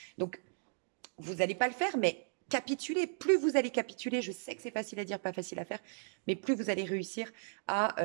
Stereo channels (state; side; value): silent; left; digital silence